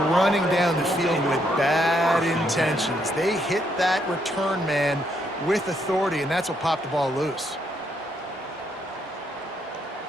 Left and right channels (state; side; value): normal; both; correlation 0.75